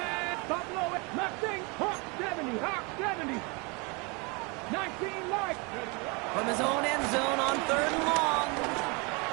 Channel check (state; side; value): quieter; left; 30.0 dB